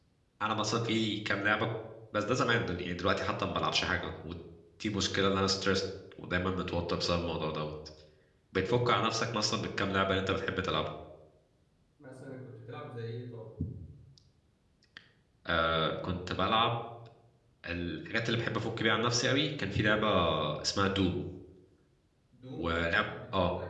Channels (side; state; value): both; identical; correlation 1.00